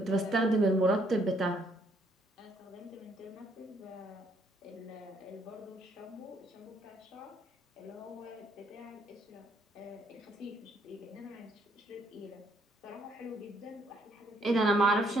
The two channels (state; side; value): normal; both; correlation 0.69